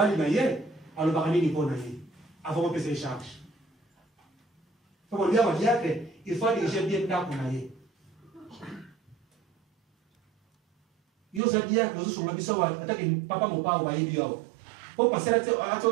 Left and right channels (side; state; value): left; drops out; at 11.4 s